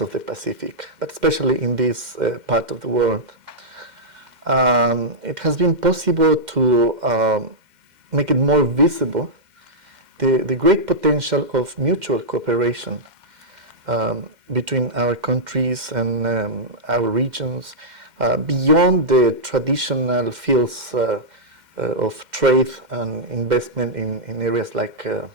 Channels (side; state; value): left; late; 2.1 ms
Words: the Pacific, but especially in this part of the world. It has been possible to make it more visible the great potential of mutual cooperation between our countries and our regions beyond the traditional fields of trade and investment in areas like